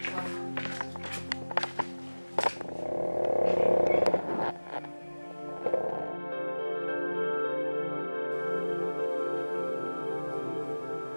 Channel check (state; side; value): inverted; both; correlation -1.00